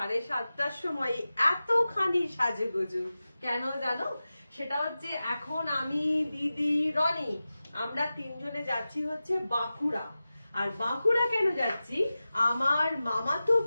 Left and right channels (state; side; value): inverted; both; correlation -0.95